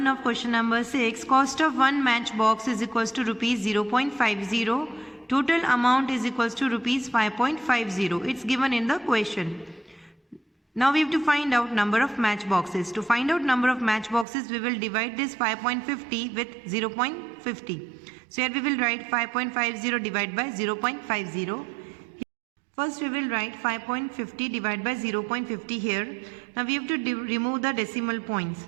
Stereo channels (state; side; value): drops out; left; at 14.2 s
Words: of question number 6. Cost of one matchbox is equals to rupees 0.50. Total amount is equals to rupees 5.50. It's given in the question. Now we have to find out number of matchboxes. To find out number of matchboxes, we will divide this 5.50 with 0.50. So here we will write 5.50 divided by 0.50. First we will write 5.50 divided by 0.50 here. Now we have to remove the decimal points.